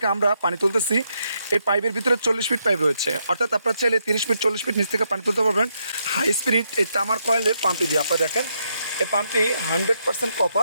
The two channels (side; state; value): both; inverted; correlation -0.79